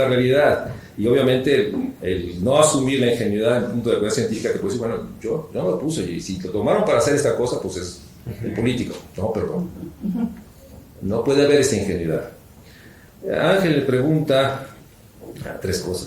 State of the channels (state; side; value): identical; both; correlation 1.00